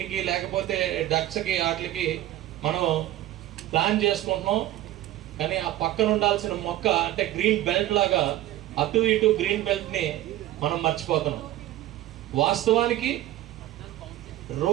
లేకపోతే డక్స్కి, వాటికి మనం ప్లాన్ చేసుకుంటున్నాం. కానీ ఆ పక్కన ఉండాల్సిన మొక్క అంటే గ్రీన్ బెల్ట్ లాగా అటు ఇటు గ్రీన్ బెల్ట్ని మనం మర్చిపోతున్నాం. వాస్తవానికి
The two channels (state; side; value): quieter; left; 14.6 dB